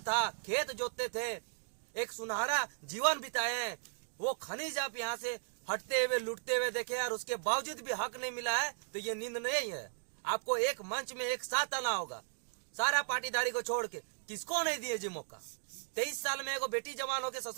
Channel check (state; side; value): silent; left; digital silence